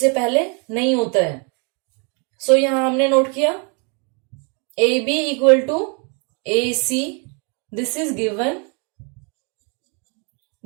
पहले नहीं होता है। सो यहां हमने नोट किया AB equal to AC, this is given.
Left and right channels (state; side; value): quieter; left; 35.3 dB